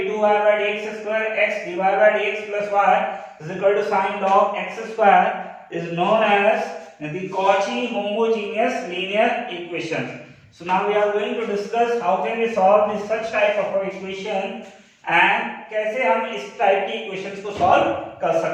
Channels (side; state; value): both; identical; correlation 1.00